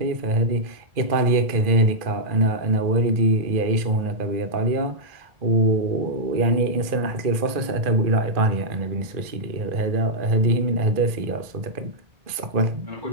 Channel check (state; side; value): late; left; 2.4 ms